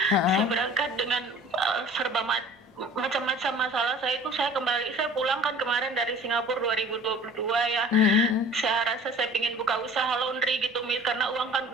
Saya berangkat dengan serba macam-macam masalah saya itu. Saya pulang kan kemarin dari Singapura 2022 ya. Saya rasa saya ingin buka usaha laundry gitu, Miss, karena uang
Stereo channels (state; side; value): normal; both; correlation 0.46